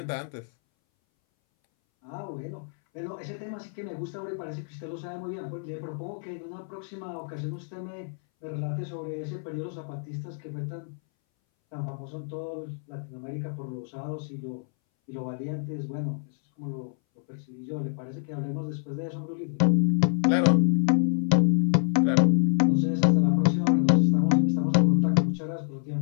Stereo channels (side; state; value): right; silent; 60 dB below the other